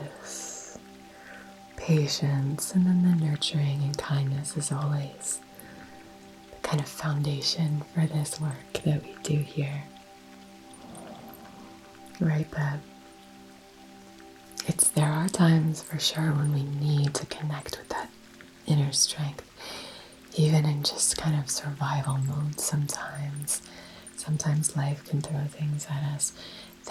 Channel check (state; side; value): identical; both; correlation 1.00